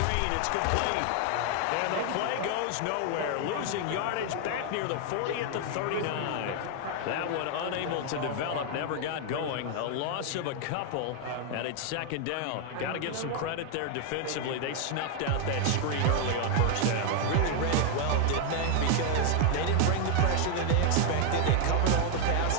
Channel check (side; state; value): both; different; correlation 0.00